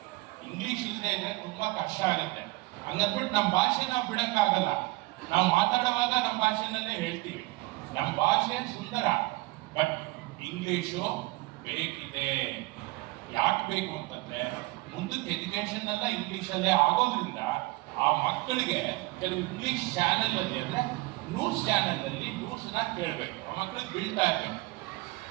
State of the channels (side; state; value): left; quieter; 22.2 dB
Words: ಇಂಗ್ಲಿಷ್ ಇಲ್ಲದೆ ಇದ್ರೆ ತುಂಬಾ ಕಷ್ಟ ಆಗುತ್ತೆ. ಹಂಗಂದ್ಬಿಟ್ಟು ನಮ್ಮ ಭಾಷೆ ನಾವು ಬಿಡಕ್ಕಾಗಲ್ಲ. ನಾವು ಮಾತಾಡುವಾಗ ನಮ್ಮ ಭಾಷೆನಲ್ಲೇ ಹೇಳ್ತೀವಿ. ನಮ್ಮ ಭಾಷೆ ಸುಂದರ, ಬಟ್ ಇಂಗ್ಲಿಷು ಬೇಕಿದೆ. ಯಾಕೆ ಬೇಕು ಅಂತಂದ್ರೆ, ಮುಂದಕ್ಕೆ ಎಜುಕೇಶನ್ ಎಲ್ಲ ಇಂಗ್ಲಿಷಲ್ಲೇ ಆಗೋದ್ರಿಂದ ಆ ಮಕ್ಕಳಿಗೆ ಕೆಲವು ಇಂಗ್ಲಿಷ್ ಚಾನೆಲ್ ಅಲ್ಲಿ ಅಂದ್ರೆ ನ್ಯೂಸ್ ಚಾನೆಲ್ ಅಲ್ಲಿ ನ್ಯೂಸ್ನ ಕೇಳಬೇಕು. ಆ ಮಕ್ಕಳಿಗೆ ಬೀಳ್ತಾ ಇರ್ಬೇಕು.